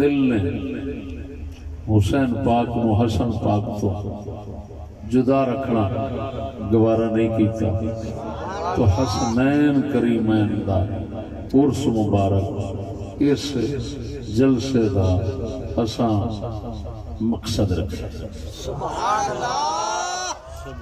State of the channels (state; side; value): identical; both; correlation 1.00